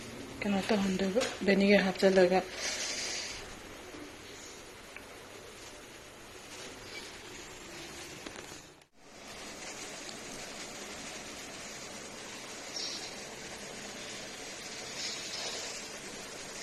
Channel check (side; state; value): both; identical; correlation 1.00